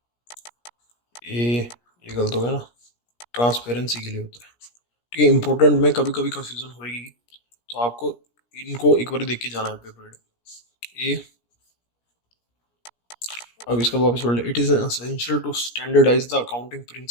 ए ये गलत हो गया ना, ट्रांसपेरेंसी के लिए होता है। ठीक है, इंपॉर्टेंट में कभी कभी कंफ्यूजन होगी, तो आपको इनको एक बार देख के जाना है पेपर ए। अब इसका वापस पढ़ ले, it is essential to standardise the accounting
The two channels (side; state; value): right; late; 17 ms